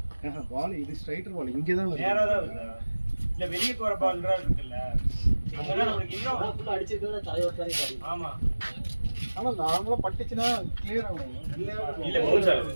பால் இது ஸ்ட்ரைட்டர் பால் இங்கே தான் நேரா தான் வருது இல்ல வெளியே போற பால்ன்றா இருக்குல்ல அங்கதான் நம்மளுக்கு இன்னும் ஃபுல்லாக அடிச்சிருக்கா தலைவர் தானே ஆடி ஆமா ஆனா நார்மலா பட்டுச்சுன்னா கிளியர் ஆகும் இல்ல போகுது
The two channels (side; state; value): both; inverted; correlation -1.00